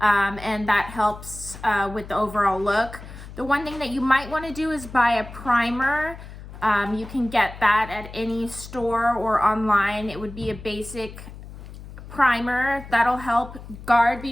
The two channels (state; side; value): noise; left; hum, 14 dB below the sound